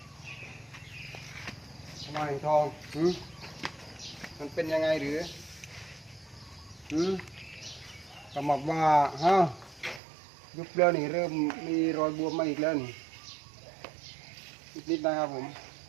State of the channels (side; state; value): left; drops out; at 10.0 s